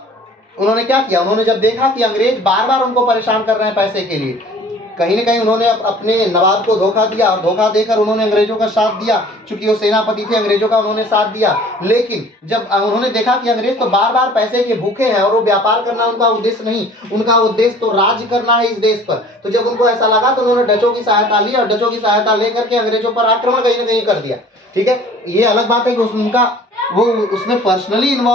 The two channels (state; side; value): normal; both; correlation 0.49